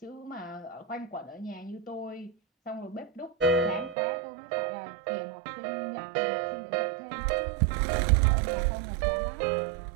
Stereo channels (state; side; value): drops out; left; at 4.0 s